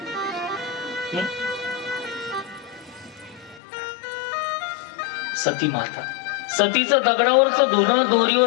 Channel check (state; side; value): drops out; right; at 3.6 s